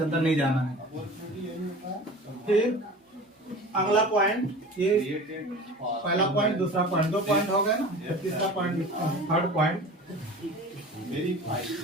अंदर नहीं जाना है। फिर अगला पॉइंट, ये पहला पॉइंट, दूसरा पॉइंट, 2 पॉइंट हो गए ना, तीसरा पॉइंट, थर्ड पॉइंट।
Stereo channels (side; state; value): both; normal; correlation 0.38